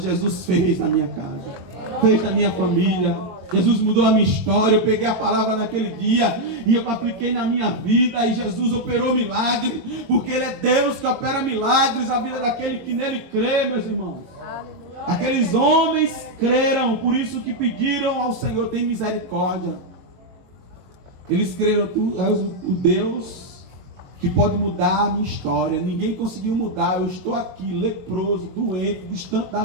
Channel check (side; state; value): left; late; 22 ms